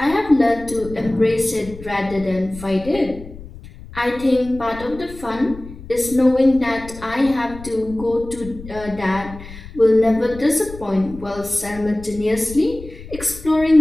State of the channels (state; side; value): noise; left; rumble, 16 dB below the sound